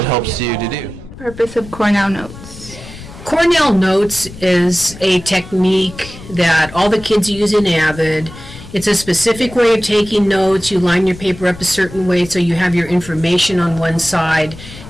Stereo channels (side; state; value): left; noise; rumble, 16 dB below the sound